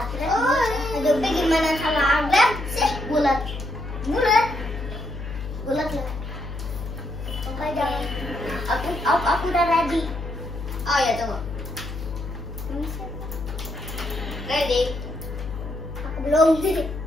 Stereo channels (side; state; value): left; noise; hum, 8 dB below the sound